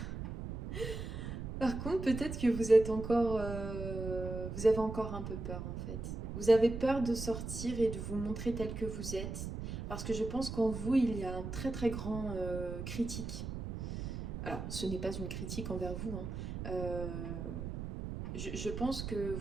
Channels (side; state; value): right; noise; rumble, 6 dB below the sound